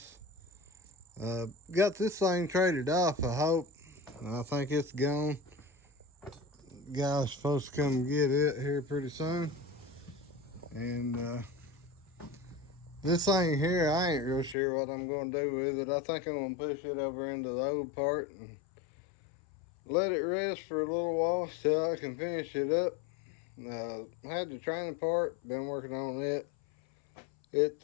Got this thing traded off, I hope. I think it's gone. Guy's supposed to come get it here pretty soon. And this thing here, I ain't real sure what I'm going to do with it. I think I'm going to push it over into the old part and let it rest for a little while till I can finish it up. Had the training part, been working on it.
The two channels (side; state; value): right; drops out; at 14.6 s